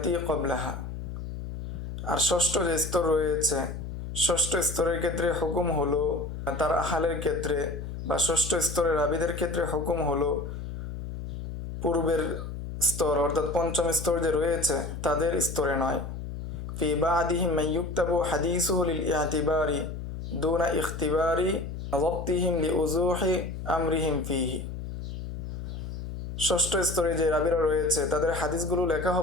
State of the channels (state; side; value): noise; left; hum, 7 dB below the sound